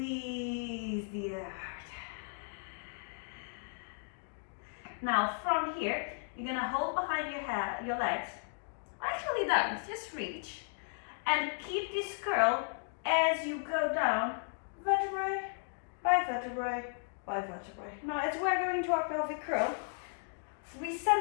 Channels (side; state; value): right; silent; digital silence